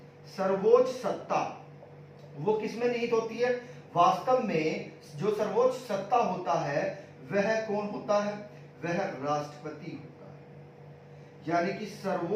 सर्वोच्च सत्ता वो किसमें निहित होती है, वास्तव में जो सर्वोच्च सत्ता होता है वह कौन होता है, वह राष्ट्रपति होता है। यानी कि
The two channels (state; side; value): identical; both; correlation 1.00